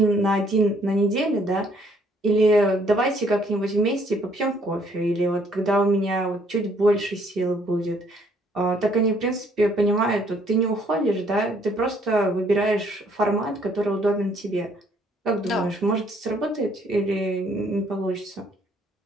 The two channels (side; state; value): both; normal; correlation 0.65